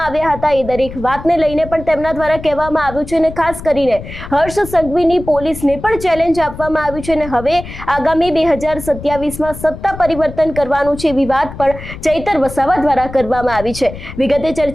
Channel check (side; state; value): left; noise; rumble, 12 dB below the sound